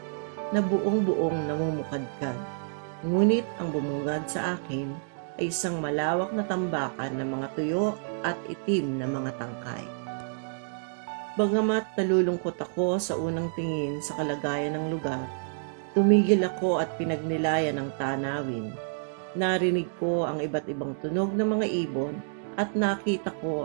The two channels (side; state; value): left; silent; digital silence